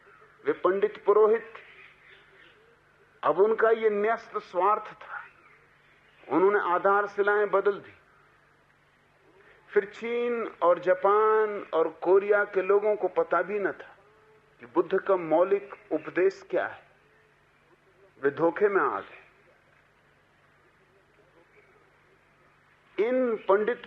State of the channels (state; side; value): identical; both; correlation 1.00